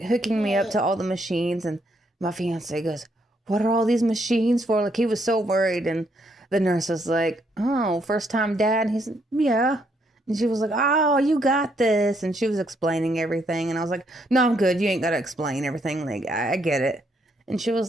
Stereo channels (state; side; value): normal; both; correlation 0.73